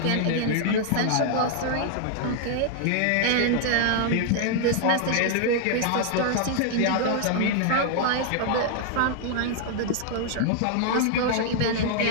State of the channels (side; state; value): both; different; correlation 0.00